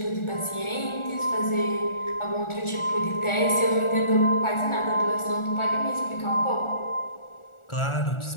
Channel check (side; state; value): right; late; 1.4 ms